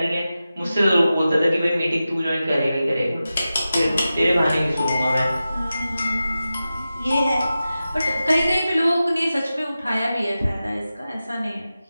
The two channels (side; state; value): both; inverted; correlation -0.93